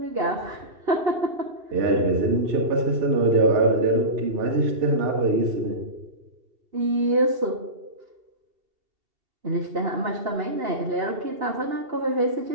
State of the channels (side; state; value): left; late; 2.7 ms